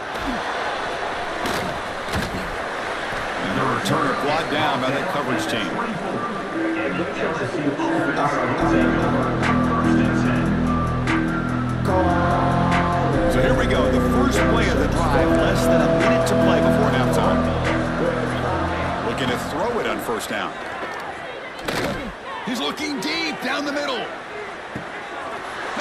And the returner brought down by the coverage team. So here we go. The first play of the drive. Less than a minute to play before halftime. Looking to throw it on 1st down. He's looking deep down the middle.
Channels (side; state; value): both; identical; correlation 1.00